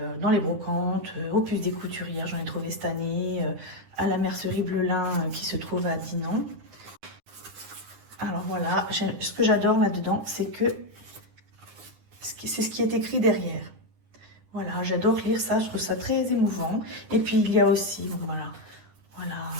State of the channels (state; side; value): late; left; 9.8 ms